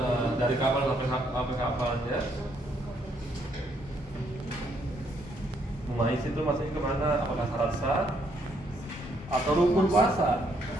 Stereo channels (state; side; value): normal; both; correlation 0.71